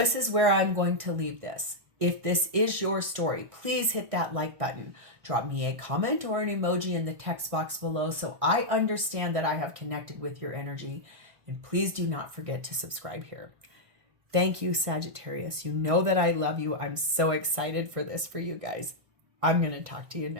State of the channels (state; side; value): late; left; 1.6 ms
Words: is where I'm going to leave this. If this is your story, please hit that like button. Drop me a comment or an emoji in the text box below so I understand that I have connected with your energy. And please do not forget to subscribe here. Thank you, Sagittarius. You know that I love you. I'm so excited for this for you guys. I'm going to talk to you